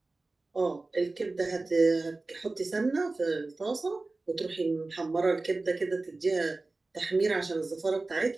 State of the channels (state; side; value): quieter; left; 3.3 dB